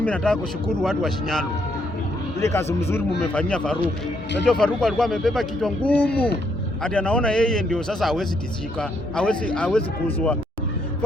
nataka kushukuru watu wa Shinyalu. Ile kazi mzuri mmefanyia Faruku. Unajua Faruku alikuwa amebeba kichwa ngumu. Hadi anaona yeye ndio sasa hawezi tishika, hawezi kuzwa.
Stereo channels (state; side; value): normal; both; correlation 0.73